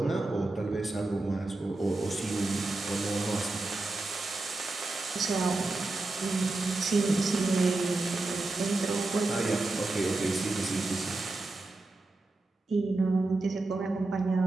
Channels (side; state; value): left; quieter; 3.1 dB